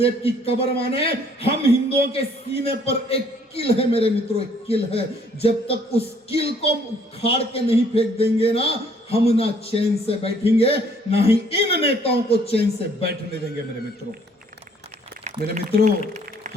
की कब्र माने हम हिंदुओं के सीने पर एक किल है। मेरे मित्रों, एक किल है। जब तक उस किल को उखाड़ के नहीं फेंक देंगे ना, हम ना चैन से बैठेंगे, ना ही इन नेताओं को चैन से बैठने देंगे। मेरे मित्रों,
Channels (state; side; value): normal; both; correlation 0.62